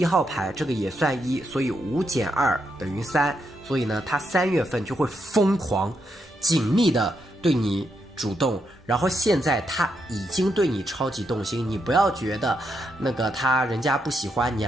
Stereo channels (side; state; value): both; normal; correlation 0.81